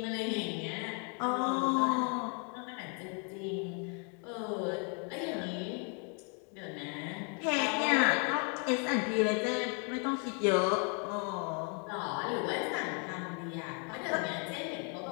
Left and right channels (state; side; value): quieter; right; 38.1 dB